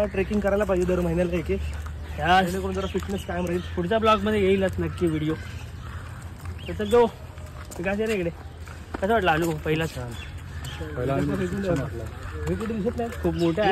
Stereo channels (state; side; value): identical; both; correlation 1.00